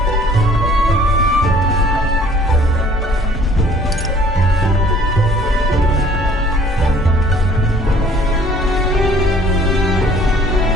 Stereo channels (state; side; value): normal; both; correlation 0.55